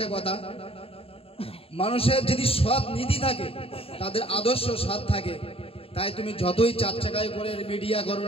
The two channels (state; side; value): late; right; 0.27 ms